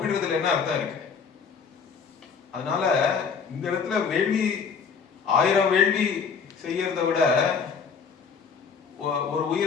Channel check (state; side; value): quieter; right; 6.0 dB